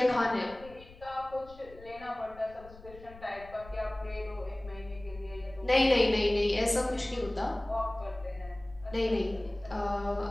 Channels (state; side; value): noise; left; rumble, 19 dB below the sound